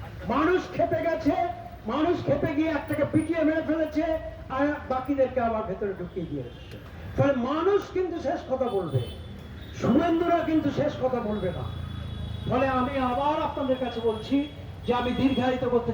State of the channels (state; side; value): identical; both; correlation 1.00